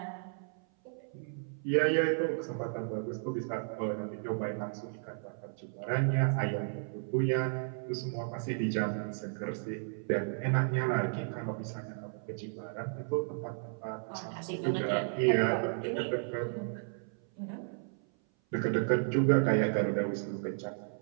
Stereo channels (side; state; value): left; silent; 55 dB below the other